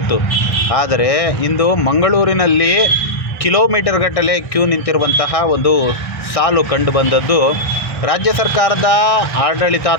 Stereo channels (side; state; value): right; late; 1.2 ms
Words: ಆದರೆ ಇಂದು ಮಂಗಳೂರಿನಲ್ಲಿ ಕಿಲೋಮೀಟರ್ ಗಟ್ಟಲೆ ಕ್ಯೂ ನಿಂತಿರುವಂತಹ ಒಂದು ಸಾಲು ಕಂಡುಬಂದದ್ದು ರಾಜ್ಯ ಸರ್ಕಾರದ